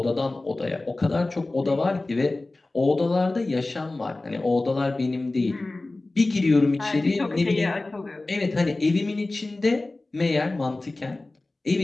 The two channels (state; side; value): quieter; right; 3.0 dB